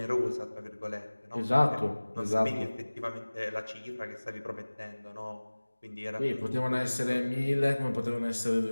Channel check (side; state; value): both; inverted; correlation -1.00